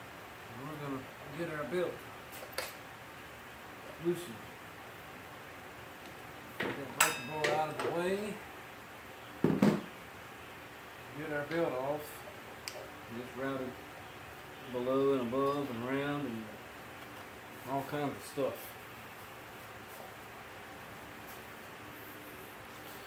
we're going to get our belt loosened. Get that breaker bar out of the way. Get our belt off. Just routed below and above and around and all kinds of stuff.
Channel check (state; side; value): identical; both; correlation 1.00